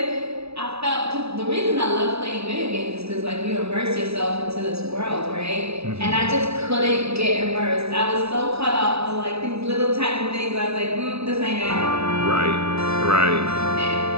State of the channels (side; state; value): left; late; 0.79 ms